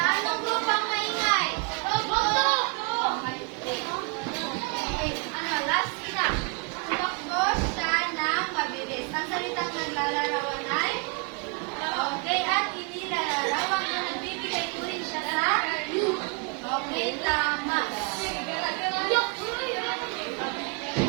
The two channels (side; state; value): left; quieter; 31.4 dB